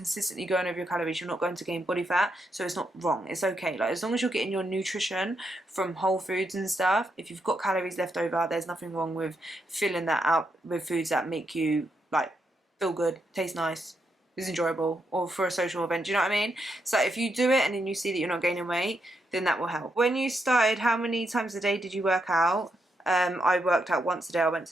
going over your calories, you're not going to gain body fat. So it's not wrong. It's okay. Like, as long as you're getting your nutrition from whole foods and stuff, if you've got calories left over, there's nothing wrong with filling that out with foods that make you like feel good, taste nice, is enjoyable, or for a social event. Do you know what I mean? So if you do it and then you see that you're not gaining weight, then that will help. When you started, how many times a day did you work out? I worked out once a day. I went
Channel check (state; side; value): normal; both; correlation 0.81